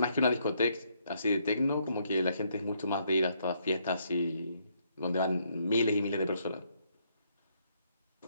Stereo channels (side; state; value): both; inverted; correlation -0.72